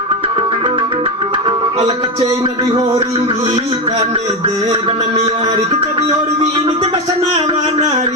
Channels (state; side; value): normal; both; correlation 0.13